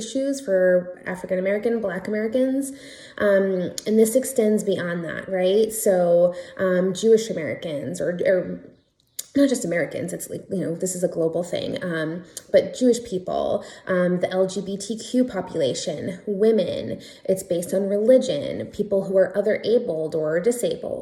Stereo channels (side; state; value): both; identical; correlation 1.00